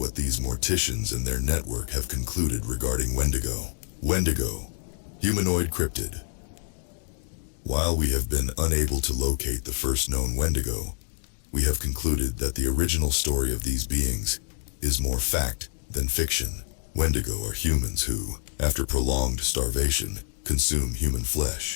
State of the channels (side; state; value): right; silent; 55 dB below the other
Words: these morticians and their network have concluded regarding Wendigo. Wendigo, humanoid cryptid. While we have been unable to locate the first known Wendigo, we have concluded that the original story of these beings is more fact than fiction. Wendigo are humans who, after prolonged starvation, consume human